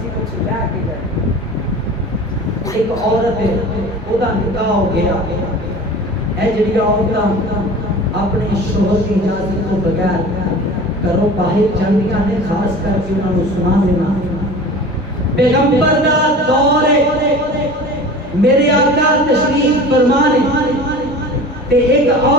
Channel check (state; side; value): normal; both; correlation 0.38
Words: کچھ لے کے جائے ایک عورت ہے او دا نکاح ہو گیا اے جڑی عورتاں اپنے شوہر کی اجازت تو بغیر کرو باہر جاندیاں نے خاص کر کے انہاں نوں سنا دینا پیغمبر دا دور ہے میرے آقا تشریف فرما نے تے ایک